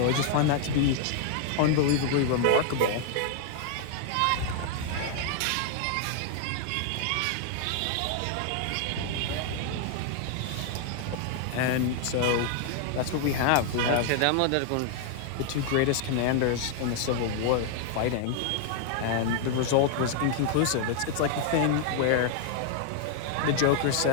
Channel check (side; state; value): both; different; correlation 0.00